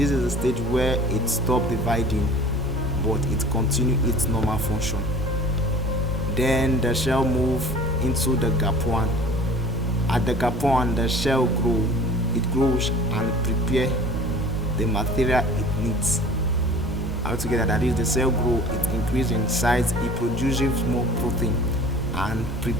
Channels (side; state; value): both; normal; correlation 0.44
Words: is the stage where it stops dividing, but it continues its normal function. Then the cell moves into the gap 1. At the gap 1, the cell grows and prepares the material it needs. Altogether, that is, the cell grows, it increases in size, it produces more protein and